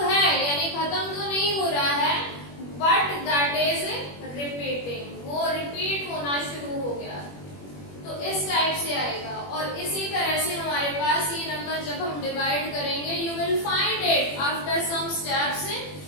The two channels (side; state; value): right; late; 21 ms